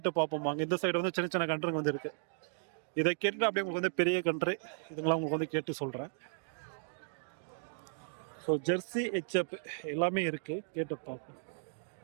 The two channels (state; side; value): silent; left; digital silence